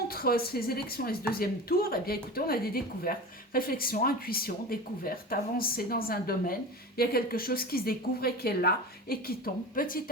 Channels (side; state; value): both; normal; correlation 0.32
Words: ces élections et ce deuxième tour, eh bien écoutez, on a des découvertes. Réflexion, intuition, découverte, avancée dans un domaine. Il y a quelque chose qui se découvre et qui est là et qui tombe petit